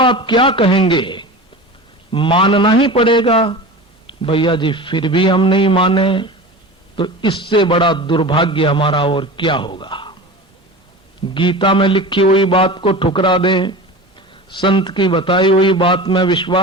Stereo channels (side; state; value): both; normal; correlation 0.32